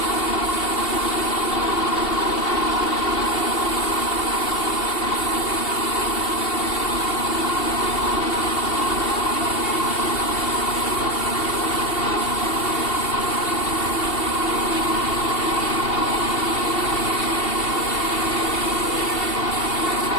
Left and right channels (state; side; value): late; right; 2.7 ms